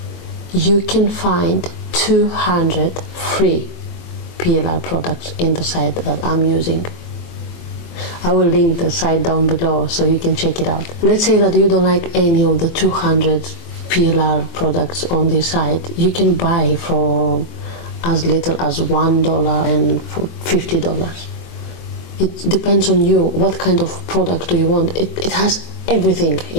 You can find 200 free PLR products in the site that I'm using. I will link the site down below so you can check it out. Let's say that you don't like any of the 200 PLR products on this site. You can buy for as little as $1 and for $50. It depends on you. What kind of product do you want? It has everything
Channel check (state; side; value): late; right; 23 ms